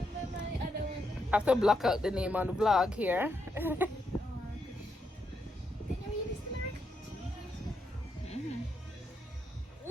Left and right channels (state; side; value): normal; both; correlation 0.81